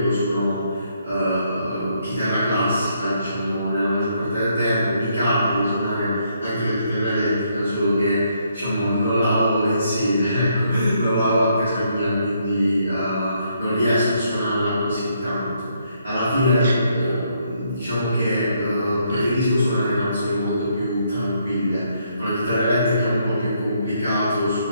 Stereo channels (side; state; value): both; inverted; correlation -0.73